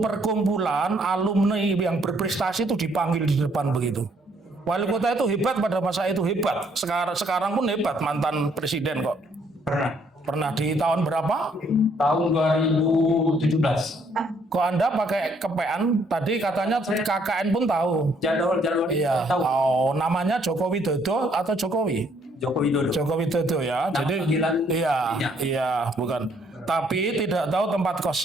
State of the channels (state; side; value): normal; both; correlation 0.67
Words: alumni yang berprestasi itu dipanggil di depan begitu? Wali kota itu hebat pada masa itu, hebat. Sekarang pun hebat, mantan presiden kok. Pernah di tahun berapa? Tahun 2017. Kok Anda pakai kepean? Tadi katanya KKN pun tahu. Jadwal Iya. tahu. Oh, namanya Joko Widodo atau Jokowi? Joko Widodo. Joko Widodo ya. Nama Jadi panggilan iya, bukan. Tapi tidak tahu tempat